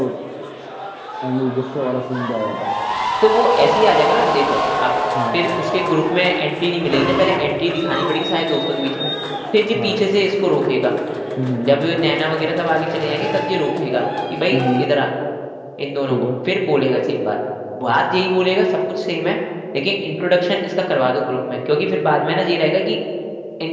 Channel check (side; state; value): both; identical; correlation 1.00